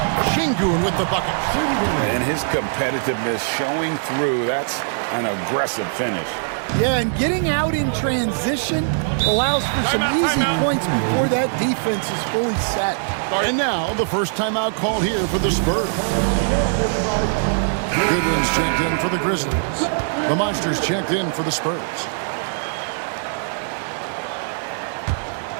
Şengün with the bucket. And his competitiveness showing through. That's an aggressive finish. Yeah, and getting out in transition allows for some easy points before that defense is fully set. And now, the first timeout call here for the Spurs. Goodwin's checked in for the Grizzlies. The Monsters checked in for the Spurs.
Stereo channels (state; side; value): silent; left; digital silence